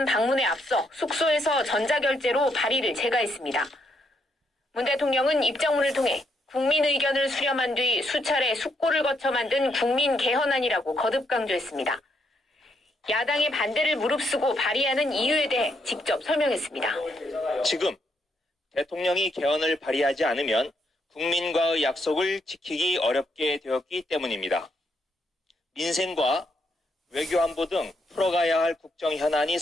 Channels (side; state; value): both; normal; correlation 0.76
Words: 방문에 앞서 숙소에서 전자결제로 발의를 재가했습니다. 문 대통령은 입장문을 통해 국민 의견을 수렴한 뒤 수차례 숙고를 거쳐 만든 국민 개헌안이라고 거듭 강조했습니다. 야당의 반대를 무릅쓰고 발의하는 이유에 대해 직접 설명했습니다. 지금 대통령이 개헌을 발의하지 않으면 국민과의 약속을 지키기 어렵게 되었기 때문입니다. 민생과 외교안보 등 풀어가야 할 국정 현안이